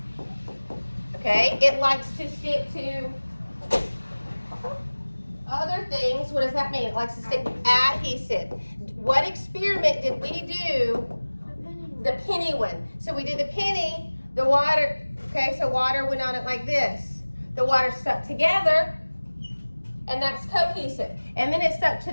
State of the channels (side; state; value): both; inverted; correlation -1.00